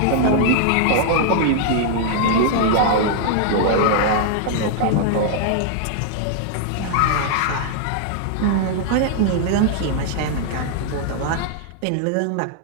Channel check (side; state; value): both; different; correlation -0.01